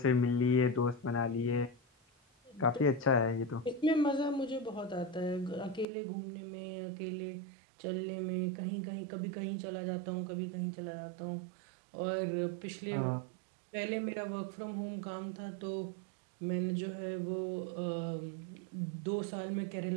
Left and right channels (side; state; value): left; drops out; at 5.9 s